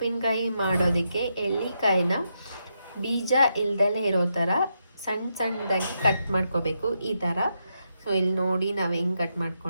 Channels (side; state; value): both; inverted; correlation -0.82